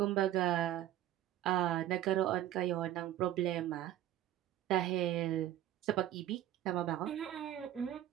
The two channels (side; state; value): left; quieter; 13.0 dB